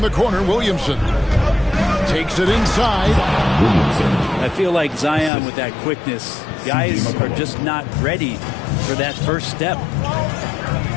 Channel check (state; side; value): drops out; right; at 5.3 s